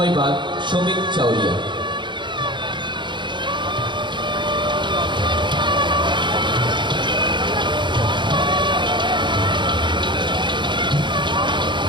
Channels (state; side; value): late; left; 0.23 ms